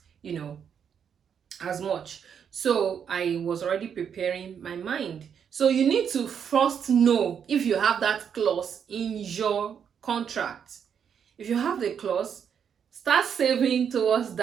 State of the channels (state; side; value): quieter; left; 7.7 dB